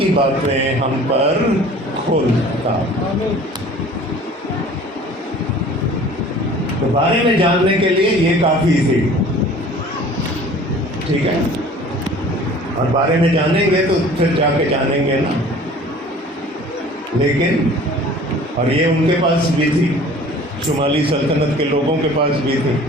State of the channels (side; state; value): both; normal; correlation 0.47